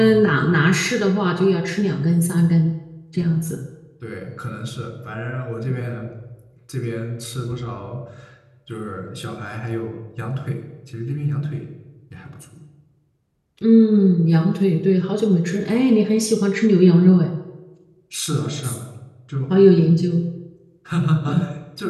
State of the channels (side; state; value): both; identical; correlation 1.00